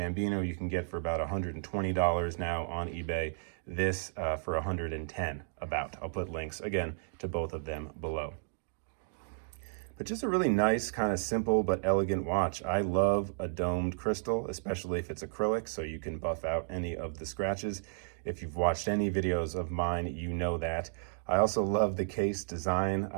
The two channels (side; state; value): left; silent; digital silence